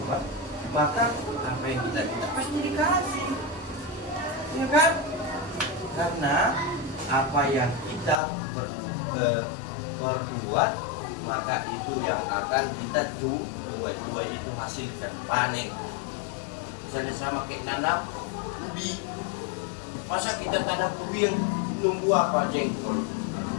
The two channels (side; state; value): right; drops out; at 8.2 s